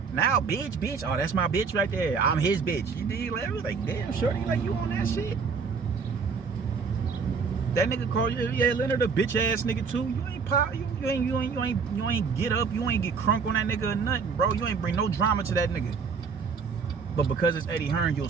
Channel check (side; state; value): left; quieter; 5.5 dB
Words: Now, bitch, oh, that's my bitch right there. I'm his bitch. You dig? Like, damn, shorty, like, you on that shit? That nigga called you, yeah, Leonard, a bitch ass nigga too. You ain't pop, you ain't get up, you ain't get crunk on that nigga or nothing, bro. You ain't bring no drama to that nigga. But because it's Eddie Hearn, you'll